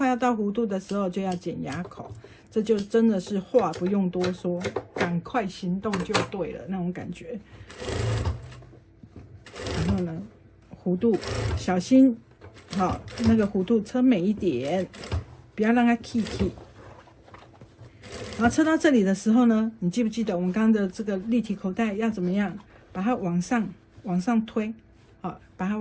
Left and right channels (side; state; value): both; identical; correlation 1.00